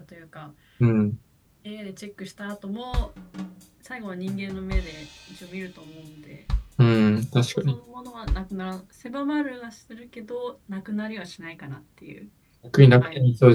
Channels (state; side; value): identical; both; correlation 1.00